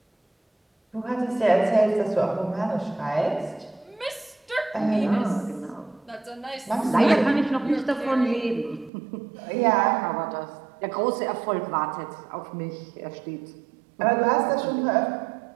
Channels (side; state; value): left; drops out; at 8.9 s